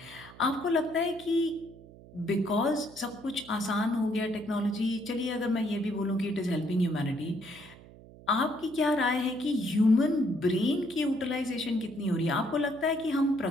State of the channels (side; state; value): right; noise; hum, 20 dB below the sound